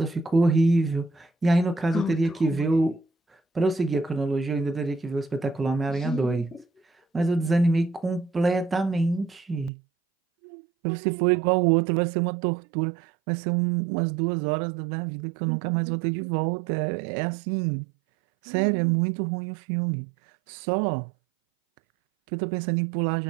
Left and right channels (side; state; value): left; drops out; at 9.7 s